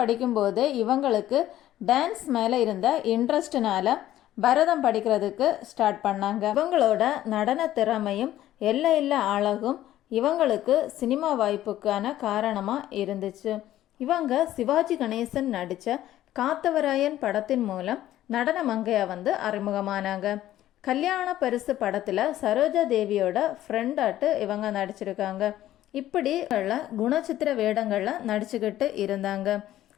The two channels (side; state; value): right; quieter; 13.4 dB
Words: இவங்களுக்கு டான்ஸ் மேலே இருந்த இன்ட்ரெஸ்ட்னால பரதம் படிக்கிறதுக்கு ஸ்டார்ட் பண்ணாங்க. இவங்களோட நடன திறமையும் எல்லையில்லா அழகும் இவங்களுக்கு சினிமா வாய்ப்புக்கான காரணமாக இருந்துச்சு. இவங்க சிவாஜி கணேசன் நடித்த காத்தவராயன் படத்தின் மூலம் நடன மங்கையாக அறிமுகமானாங்க. கல்யாண பரிசு படத்தில் சரோஜா தேவியோட ஃப்ரெண்டாட்டு இவங்க நடிச்சிருக்காங்க. இப்படி குணச்சித்திர வேடங்களில் நடிச்சுக்கிட்டு இருந்தாங்க.